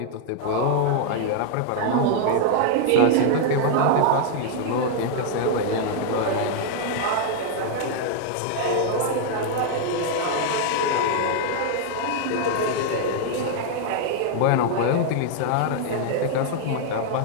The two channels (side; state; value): both; different; correlation -0.01